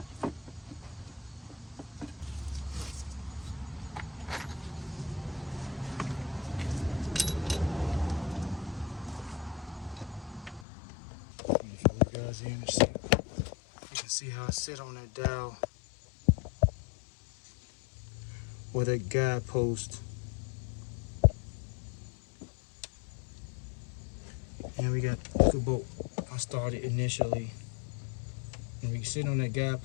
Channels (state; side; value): drops out; right; at 10.7 s